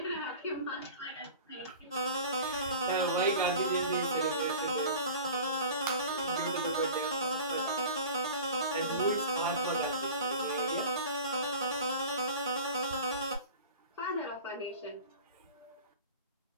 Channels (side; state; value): both; inverted; correlation -0.39